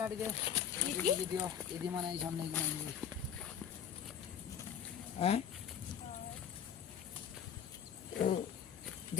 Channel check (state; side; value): quieter; right; 8.6 dB